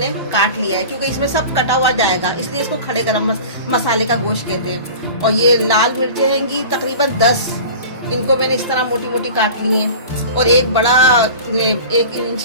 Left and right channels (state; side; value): inverted; both; correlation -0.37